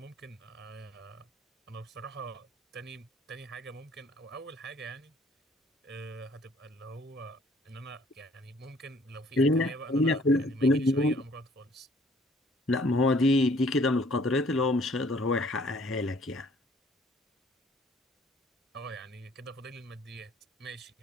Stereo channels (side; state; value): both; normal; correlation 0.59